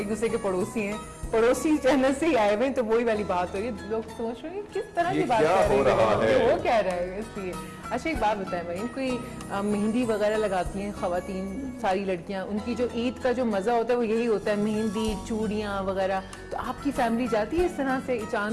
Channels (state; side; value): identical; both; correlation 1.00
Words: दूसरे के पड़ोसी हैं, पड़ोसी चैनल से ही आए हुए हैं, तो वही वाली बात हो रही है। लोग सोच रहे हैं किस तरह ये की बात क्या कर रहे हो रहा हैं, है? वो क्या रहा है इसलिए। अच्छा एक बात बताएं मरीन, कोई मेहंदी वगैरह लगाती हैं खवातीन सारी लड़कियां, उनकी जो ईद का जो मजा होता है वो यही होता है, मेहंदी चूड़ियां वगैरह। तो आपकी फैमिली जाती है इस तरह से